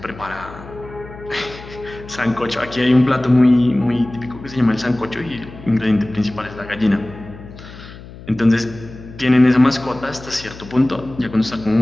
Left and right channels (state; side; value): noise; left; hum, 16 dB below the sound